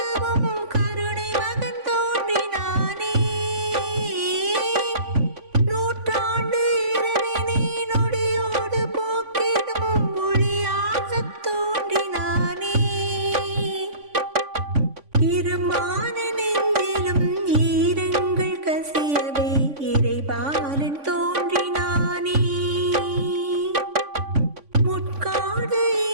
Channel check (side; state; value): left; late; 3.5 ms